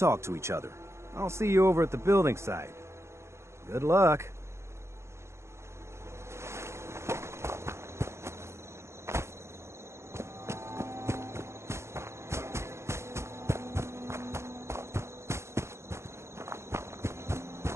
to each other. I'll see you over at the building site. Good luck.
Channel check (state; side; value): late; left; 0.13 ms